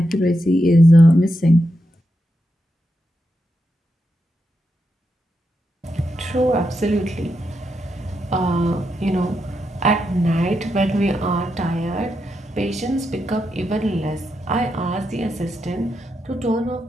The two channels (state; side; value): normal; both; correlation 0.84